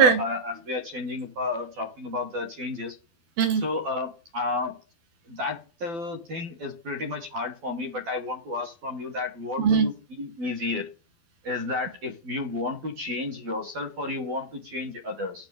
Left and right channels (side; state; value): left; late; 12 ms